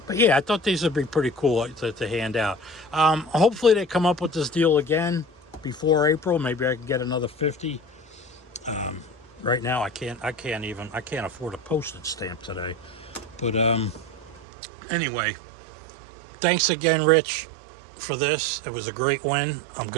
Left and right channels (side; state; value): left; drops out; at 14.5 s